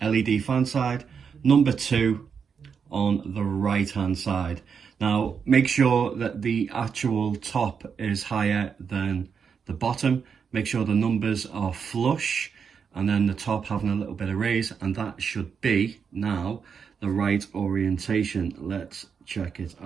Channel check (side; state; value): left; quieter; 6.4 dB